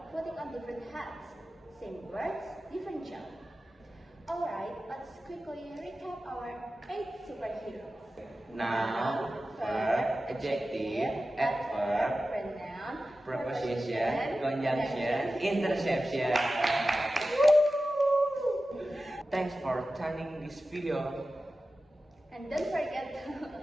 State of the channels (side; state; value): both; normal; correlation 0.94